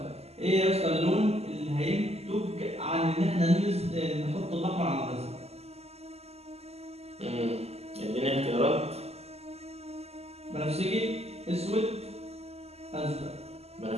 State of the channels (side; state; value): left; late; 0.30 ms